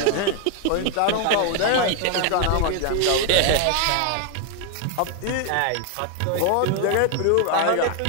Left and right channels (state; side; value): different; both; correlation 0.00